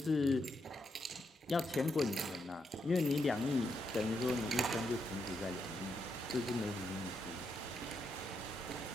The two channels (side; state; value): both; normal; correlation 0.81